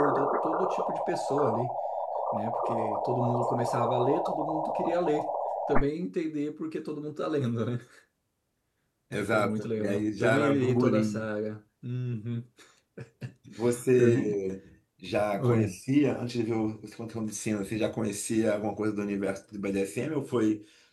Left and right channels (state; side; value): identical; both; correlation 1.00